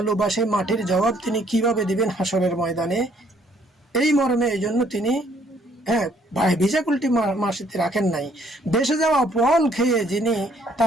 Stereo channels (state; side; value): normal; both; correlation 0.64